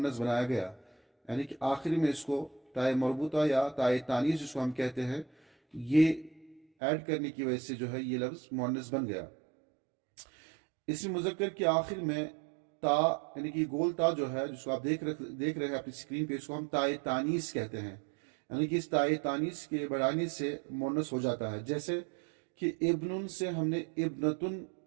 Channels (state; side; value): drops out; left; at 6.7 s